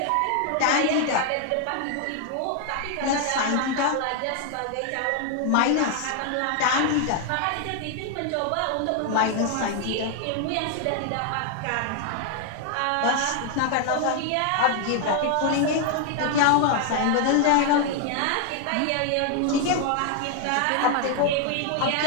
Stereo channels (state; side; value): different; both; correlation 0.00